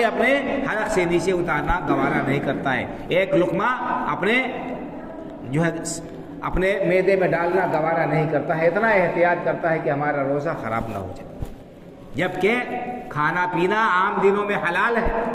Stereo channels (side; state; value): both; identical; correlation 1.00